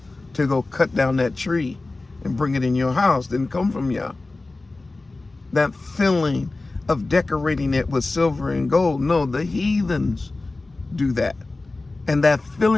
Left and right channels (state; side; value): quieter; right; 3.3 dB